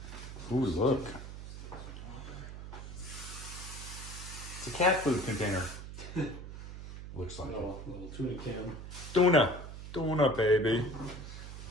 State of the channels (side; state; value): right; noise; hum, 10 dB below the sound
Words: Ooh, look. It's a cat food container. Looks like Little tuna can. Tuna, baby.